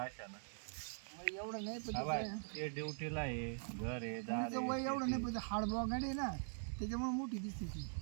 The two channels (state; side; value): silent; left; digital silence